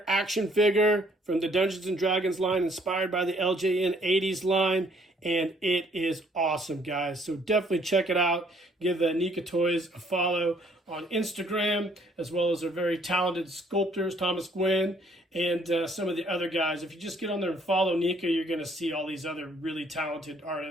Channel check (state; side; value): normal; both; correlation 0.63